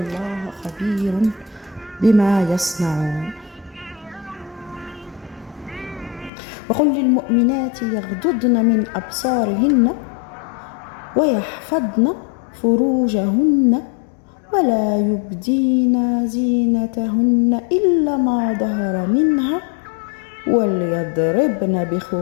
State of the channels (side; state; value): right; drops out; at 6.3 s